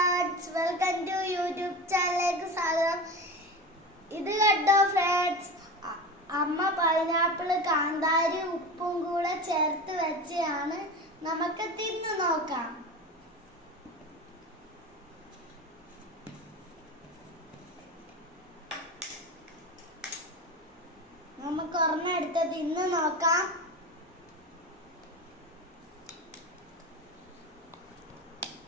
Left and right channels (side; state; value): both; normal; correlation 0.28